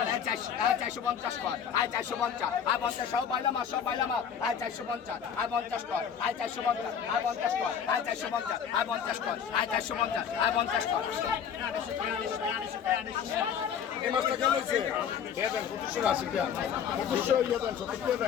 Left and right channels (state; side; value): quieter; right; 7.9 dB